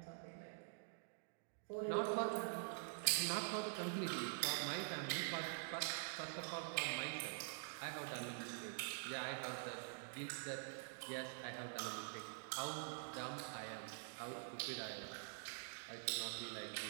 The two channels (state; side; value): silent; left; digital silence